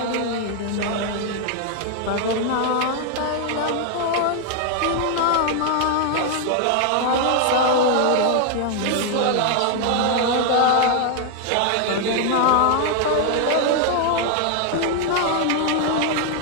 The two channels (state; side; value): different; both; correlation 0.00